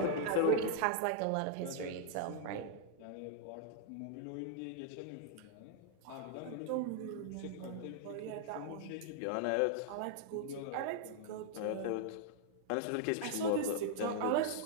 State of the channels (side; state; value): both; different; correlation -0.01